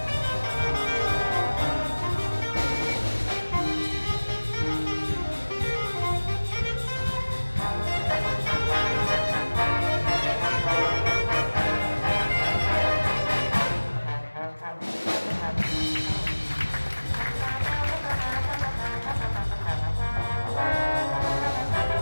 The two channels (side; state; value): both; inverted; correlation -1.00